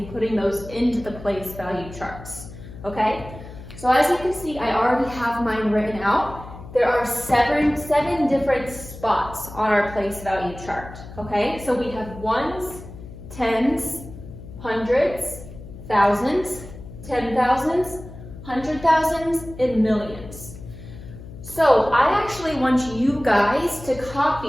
putting those into the place value charts. Okay? So as you can see, I already have mine written out. There are seven different spots on our place value chart. Okay? So we have ones, tens, hundreds, thousands, 10,000s, 100,000s, and millions. So I actually want you guys to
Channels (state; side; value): noise; left; hum, 14 dB below the sound